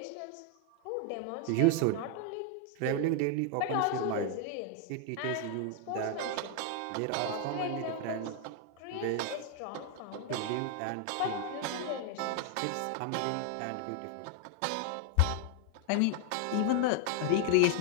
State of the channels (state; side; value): different; both; correlation 0.00